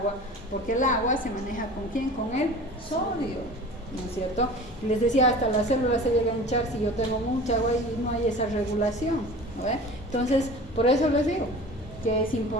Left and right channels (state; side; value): normal; both; correlation 0.39